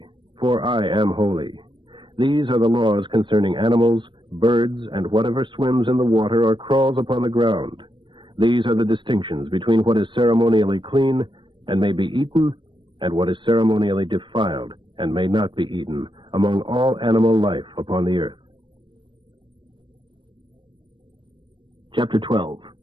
for I am holy. These are the laws concerning animals, birds, and whatever swims in the water or crawls upon the ground. These are the distinctions between what is ceremonially clean and may be eaten, and what is ceremonially defiled and may not be eaten among all animal life upon the earth. Chapter 12.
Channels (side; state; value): left; late; 0.23 ms